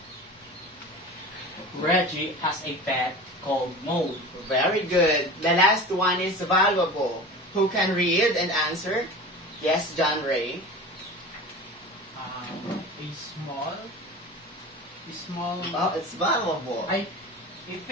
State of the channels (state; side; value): normal; both; correlation 0.35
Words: Reggie has a pet called Mole. Very good. The last one is Valuable. Who can read and answer? Yes, John Ray. A small. Oh, it's valuable. I